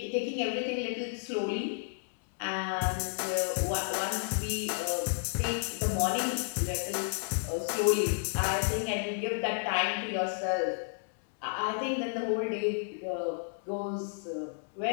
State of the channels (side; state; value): right; silent; digital silence